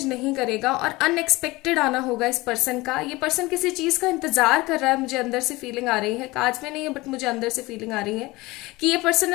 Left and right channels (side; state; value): right; quieter; 21.3 dB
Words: नहीं करेगा, और अनएक्सपेक्टेड आना होगा इस पर्सन का। ये पर्सन किसी चीज का इंतजार कर रहा है, मुझे अंदर से फीलिंग आ रही है, कार्ड्स में नहीं है बट मुझे अंदर से फीलिंग आ रही है कि ये पर्सन